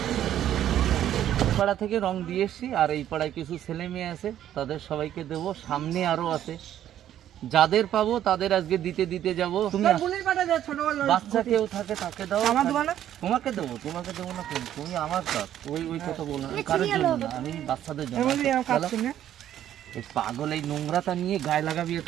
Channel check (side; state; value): left; quieter; 11.3 dB